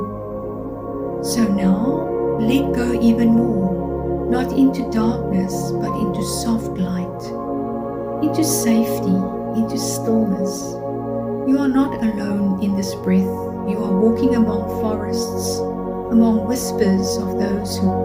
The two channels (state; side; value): identical; both; correlation 1.00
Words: So now, let go even more, not into darkness, but into soft light, into safety, into stillness. You are not alone in this breath. You are walking among forests, among whispers of those